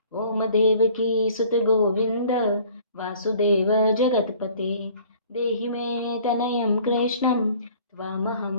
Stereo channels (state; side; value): inverted; both; correlation -0.52